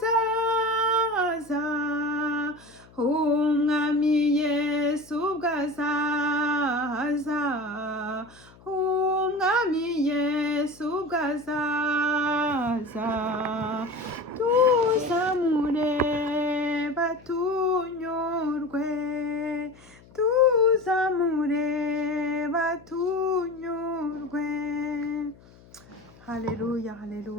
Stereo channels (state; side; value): noise; left; hum, 25 dB below the sound